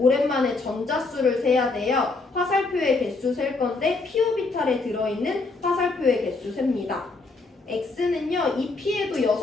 전자수를 세야 돼요. 화살표의 개수 셀 건데 P오비탈에 들어있는 화살표의 개수 셉니다. X는요 2P에도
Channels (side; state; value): right; quieter; 3.6 dB